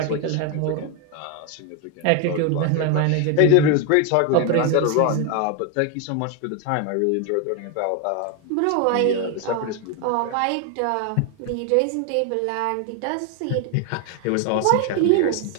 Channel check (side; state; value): both; different; correlation 0.01